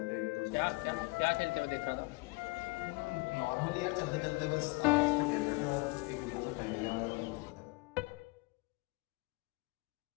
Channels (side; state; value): right; quieter; 25.9 dB